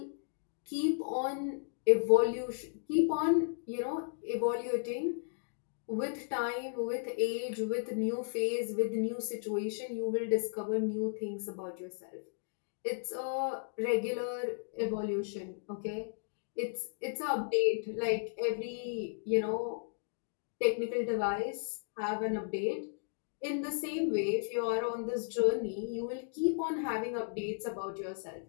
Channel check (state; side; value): silent; right; digital silence